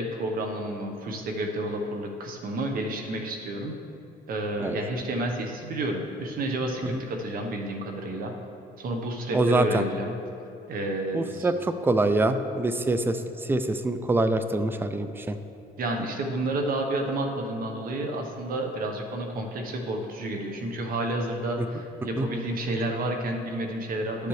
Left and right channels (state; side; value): normal; both; correlation 0.62